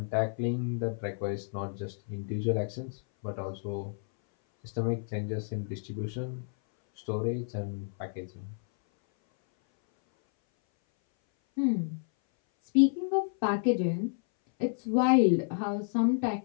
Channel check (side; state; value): right; silent; 58 dB below the other